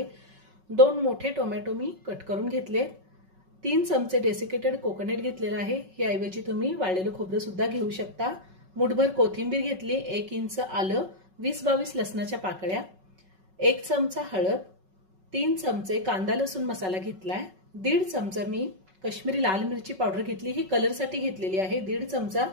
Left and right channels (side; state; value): left; late; 5.3 ms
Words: 2 मोठे टोमॅटो मी कट करून घेतले। 3 चमचे डेसिकेटेड कोकोनट घेतलेला आहे। याऐवजी तुम्ही वाळलेलं खोबरं सुद्धा घेऊ शकता। मुठभर कोथिंबीर घेतली, 1 इंच आलं, 20-22 लसणाच्या पाकळ्या, 1 चमचा हळद, 3 चमचे कांदा लसूण मसाला घेतलाय, 1.5 चमचा मी काश्मीरी लाल मिरची पावडर घेतली, ही कलरसाठी घेतलेली आहे, 1.5 चमचा